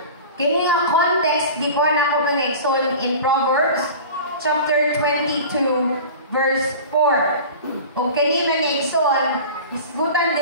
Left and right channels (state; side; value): inverted; both; correlation -0.37